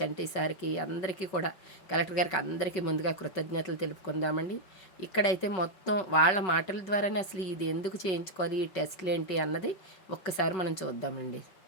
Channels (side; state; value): right; late; 5.3 ms